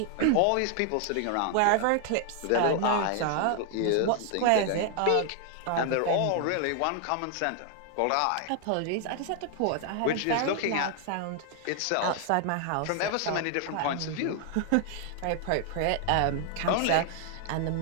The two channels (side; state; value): both; different; correlation 0.00